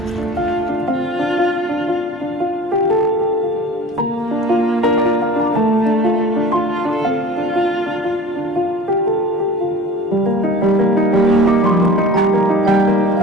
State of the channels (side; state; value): both; normal; correlation 0.41